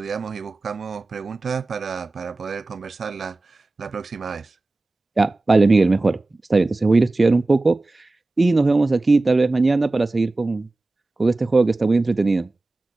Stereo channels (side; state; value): left; quieter; 3.1 dB